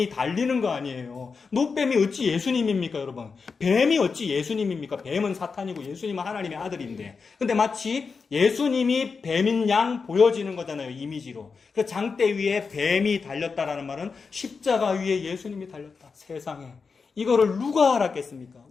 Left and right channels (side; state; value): right; quieter; 5.0 dB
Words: 달리는 거 아니에요. 놋뱀이 어찌 예수님입니까, 여러분? 뱀이 어찌 예수님입니까? 뱀은 사탄이고 예수님은 하나님의 아들인데. 근데 마치 예수님이 뱀인 양 보여지는 거잖아요, 이미지로. 그 장대 위에 뱀이 달렸다라는 말은 십자가 위에 예수님이 달렸다. 세상에. 이거를 누가 알았겠습니까?